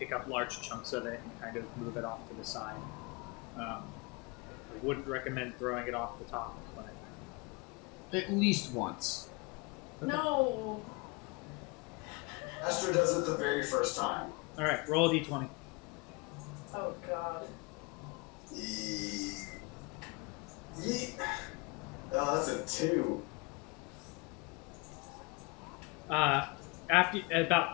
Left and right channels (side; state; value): right; quieter; 28.6 dB